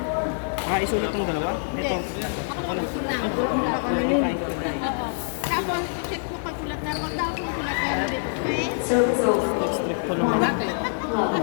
Isulat ng dalawa? Ito. Ako lang sulat. Kain ka rin. Oo. Tapos, check mo pag kulat na. Kung daw kung kulat na dito. Okay? Service over. Strip ko lang. Bakit? Oh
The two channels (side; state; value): right; silent; digital silence